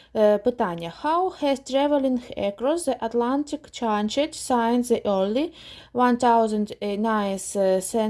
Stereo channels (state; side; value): identical; both; correlation 1.00